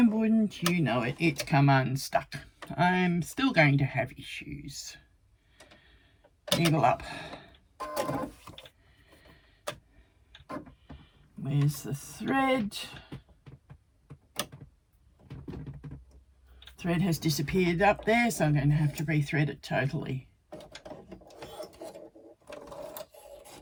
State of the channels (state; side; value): identical; both; correlation 1.00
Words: wouldn't you know it, it's come unstuck. I'm still going to have issues. Needle up. Where's the thread? Thread has disappeared up there, so I'm going to have to rethread it totally.